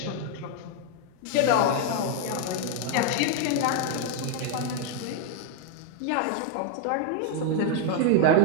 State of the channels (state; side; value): different; both; correlation 0.00